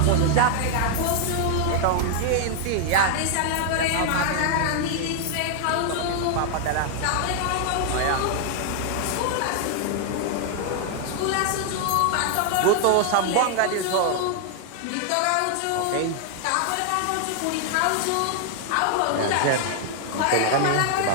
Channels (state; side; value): different; both; correlation 0.00